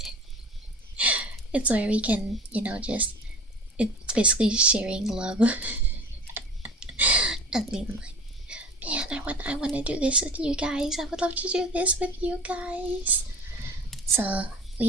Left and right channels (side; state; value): both; normal; correlation 0.39